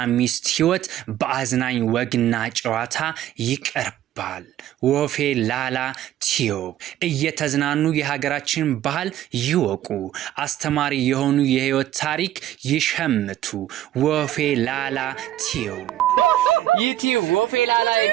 ሚስት ህይወት በአዝናኝ ወግና ጨዋታ ይቀርባል። ወፌላላ ቲዩብ እየተዝናኑ የሀገራችን ባህል ይወቁ፣ አስተማሪ የሆኑ የህይወት ታሪክ ይሸምቱ። ወፌላላ ቲዩብ ዩቲዩብ ወፌላላ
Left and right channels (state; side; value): quieter; left; 12.9 dB